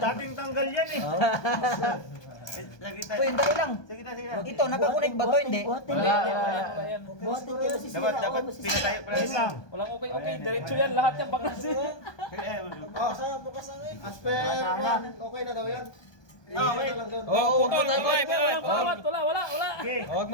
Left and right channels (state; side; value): late; right; 1.2 ms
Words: Dating tanggal yan eh. Oh. Lagi tayo. Uy, dali lang. Sige na, sige na. Ito, nakakunik ba to? Hindi. Wala. Buhatin kayo si Dapat pinatayo pala yun lang. Walang okay. Diretso yan. Lahat yan baklas. Oh, saan bukas ang Asper, okay na daw yan. Okay lang doon. Oh, putol. Wala. Okay. Huwag